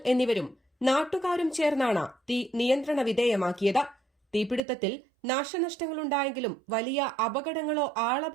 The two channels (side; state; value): left; drops out; at 4.6 s